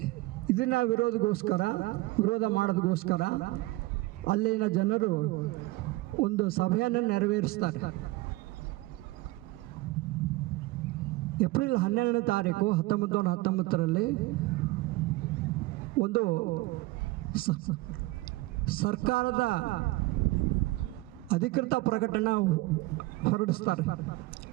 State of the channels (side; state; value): left; quieter; 20.3 dB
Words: ಇದನ್ನ ವಿರೋಧ ಮಾಡೋದಕ್ಕೋಸ್ಕರ ಅಲ್ಲಿನ ಜನರು ಒಂದು ಸಭೆಯನ್ನು ನೆರವೇರಿಸ್ತಾರೆ. ಏಪ್ರಿಲ್ 12ನೇ ತಾರೀಕು 1919ರಲ್ಲಿ ಒಂದು ಸರ್ಕಾರದ ಅಧಿಕೃತ ಪ್ರಕಟಣೆ ಹೊರಡಿಸ್ತಾರೆ.